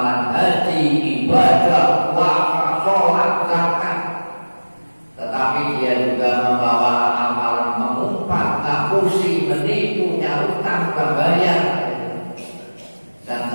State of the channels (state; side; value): inverted; both; correlation -1.00